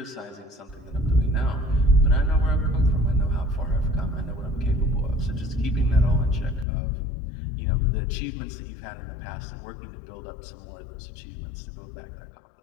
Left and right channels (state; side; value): drops out; right; at 6.7 s